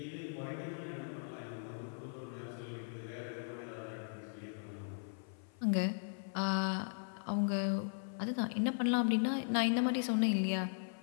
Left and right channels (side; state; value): right; silent; 52 dB below the other